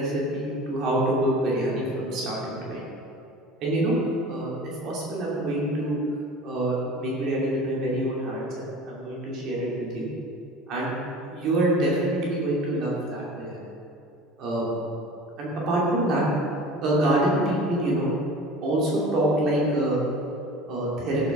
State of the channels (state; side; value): normal; both; correlation 0.39